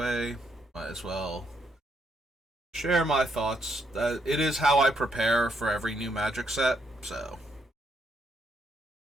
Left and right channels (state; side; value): normal; both; correlation 0.76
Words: Might as well share my thoughts. It is how I prepare for every new Magic set. So